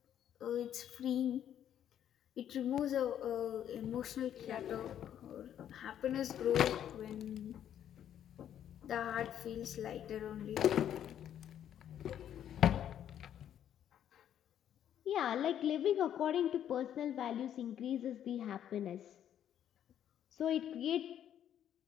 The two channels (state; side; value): quieter; right; 10.2 dB